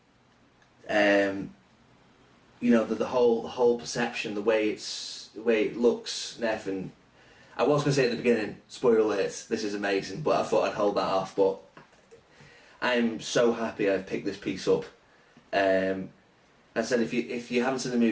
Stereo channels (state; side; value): identical; both; correlation 1.00